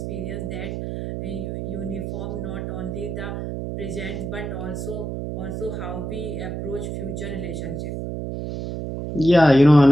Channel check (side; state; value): right; noise; hum, 5 dB below the sound